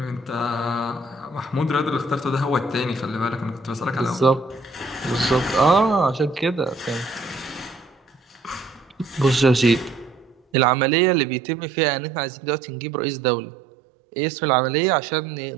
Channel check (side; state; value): left; drops out; at 10.4 s